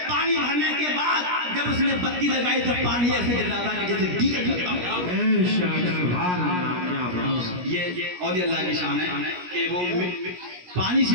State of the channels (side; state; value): left; late; 17 ms